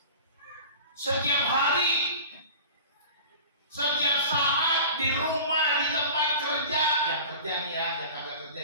Setiap hari, setiap saat, di rumah, di tempat kerja, yang kerja nih ya, yang kagak kerja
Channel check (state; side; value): inverted; both; correlation -0.39